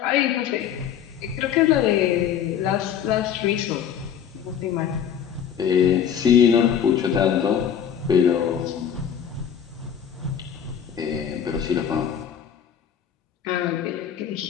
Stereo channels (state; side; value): quieter; right; 8.6 dB